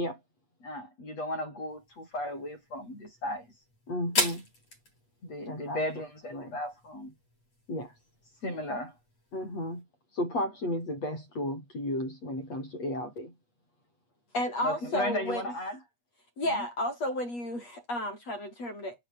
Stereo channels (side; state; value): right; late; 8.3 ms